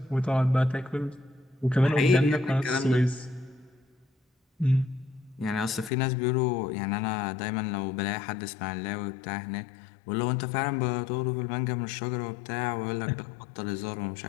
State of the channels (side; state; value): right; drops out; at 5.9 s